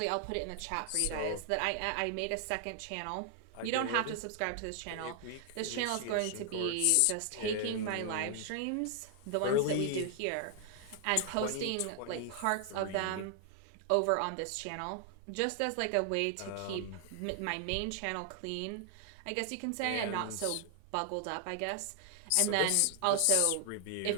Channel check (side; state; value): both; different; correlation 0.00